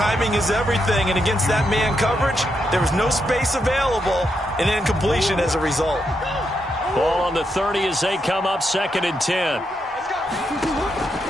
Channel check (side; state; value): both; normal; correlation 0.82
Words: is everything. And against that man coverage, there was no space available, and incompletion as a result. Ball on the 30 as they come up, 2nd and 10.